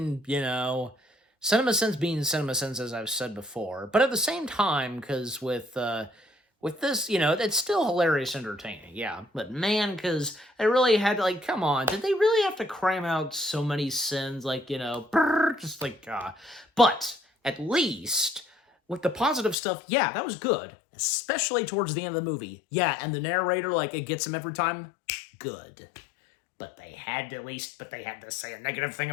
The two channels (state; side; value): drops out; right; at 19.6 s